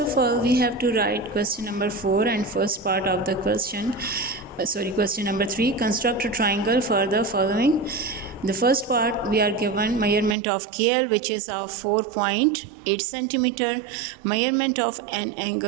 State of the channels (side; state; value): left; drops out; at 10.4 s